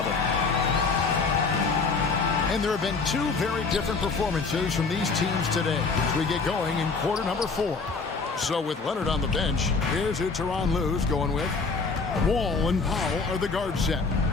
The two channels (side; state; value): right; quieter; 4.4 dB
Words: And there have been 2 very different performances from these teams today as we get going in quarter number 4. So with Leonard on the bench, here's who Tyronn Lue's going with. Wall and Powell are the guard set.